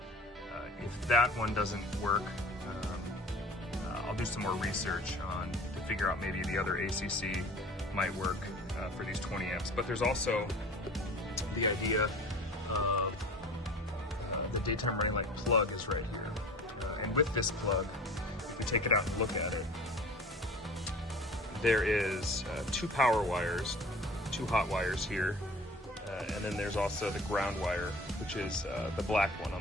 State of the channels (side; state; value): both; normal; correlation 0.42